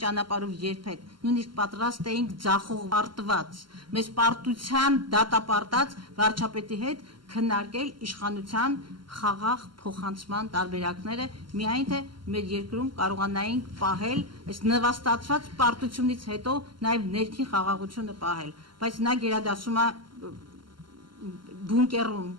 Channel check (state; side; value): late; left; 0.72 ms